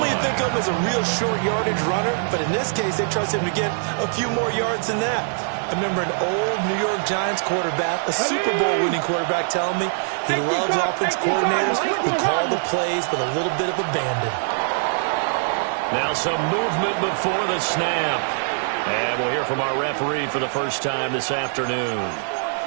you think of him as a real short yardage runner, but in this case they trust him to get a few more yards than that. I remember an old New York Giants quarterback, a Super Bowl winning quarterback, telling me he loves offense coordinators who call the plays with a little bit of abandon. Now some movement before the snap. And we'll hear from our referee for the first time this afternoon.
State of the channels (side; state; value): left; silent; digital silence